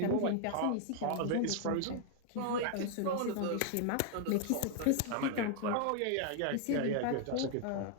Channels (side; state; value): both; different; correlation 0.00